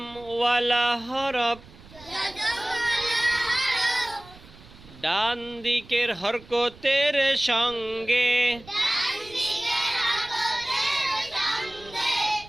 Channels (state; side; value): noise; right; rumble, 21 dB below the sound